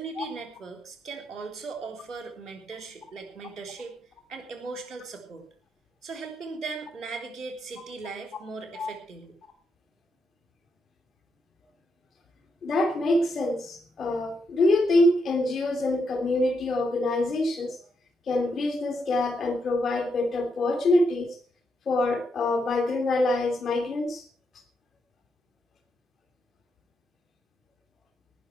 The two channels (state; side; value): normal; both; correlation 0.81